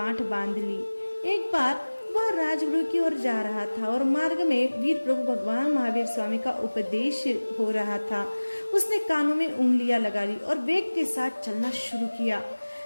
बांध ली। एक बार वह राजगृह की ओर जा रहा था और मार्ग में वीर प्रभु भगवान महावीर स्वामी का उपदेश हो रहा था। उसने कानों में उंगलियां लगा ली और वेग के साथ चलना शुरू किया।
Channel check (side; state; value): both; inverted; correlation -1.00